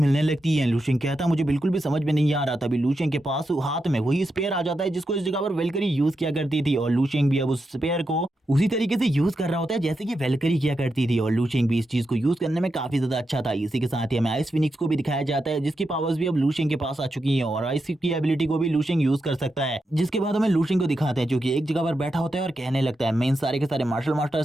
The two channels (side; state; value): both; normal; correlation 0.86